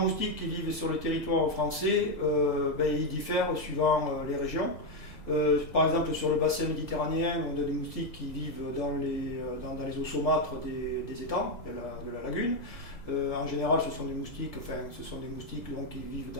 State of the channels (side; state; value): right; late; 1.8 ms